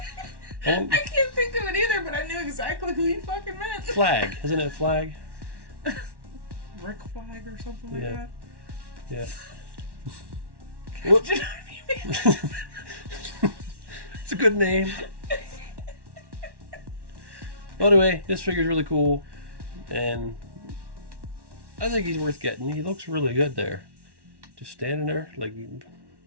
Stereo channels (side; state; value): left; late; 1.1 ms